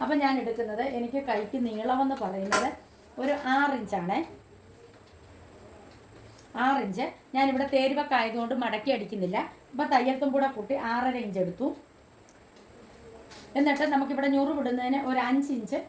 അപ്പം ഞാൻ എടുക്കുന്നത്, എനിക്ക് കൈക്ക് നീളമെന്ന് പറയുന്നത് ഒരു 6 ഇഞ്ചാണേ. 6 ഇഞ്ച് ഞാനിവിടെ തേരുവൊക്കെ ആയതുകൊണ്ട് മടക്കി അടിക്കുന്നില്ല. അപ്പോൾ തയ്യൽത്തും കൂടെ കൂട്ടി 6.5 ഇഞ്ച് എടുത്തു. എന്നിട്ട് നമുക്കിവിടെ ഞുറു വിടുന്നതിന് ഒരു 5 ഇഞ്ച്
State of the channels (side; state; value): both; identical; correlation 1.00